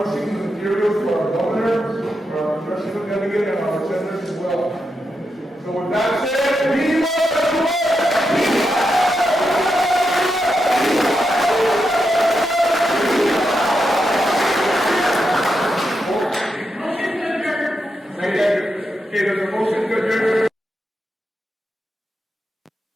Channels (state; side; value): normal; both; correlation 0.85